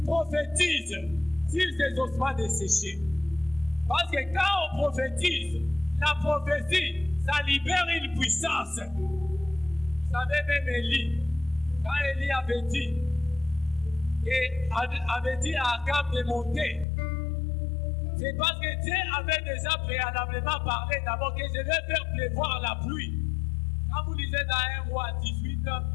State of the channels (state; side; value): drops out; right; at 16.9 s